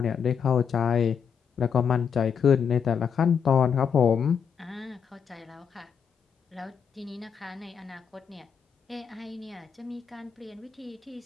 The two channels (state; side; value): quieter; right; 7.0 dB